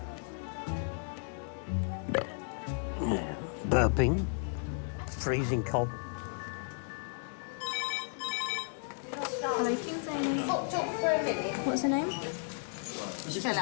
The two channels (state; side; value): silent; right; 55 dB below the other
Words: Yeah, burping, freezing cold. Hello, King's A&E. Popped up for a minute. What's her name? She fell